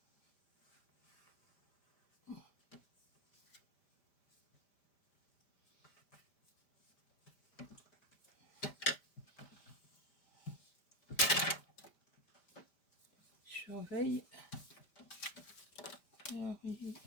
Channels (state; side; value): late; right; 5.0 ms